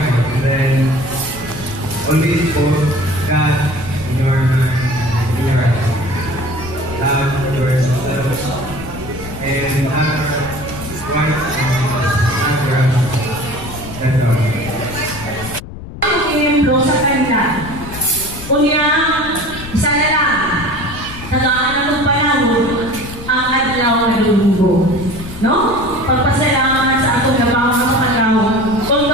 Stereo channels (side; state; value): left; noise; rumble, 12 dB below the sound